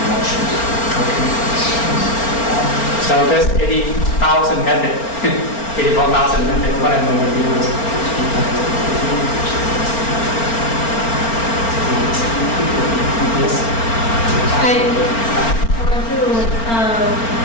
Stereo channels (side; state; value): right; late; 4.4 ms